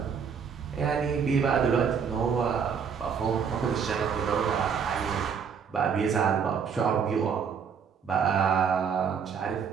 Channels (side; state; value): left; quieter; 6.7 dB